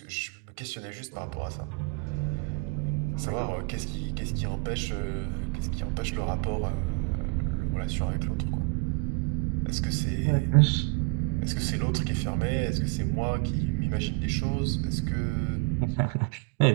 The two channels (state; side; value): quieter; left; 29.5 dB